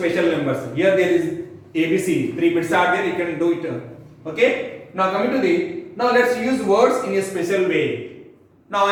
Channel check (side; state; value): both; identical; correlation 1.00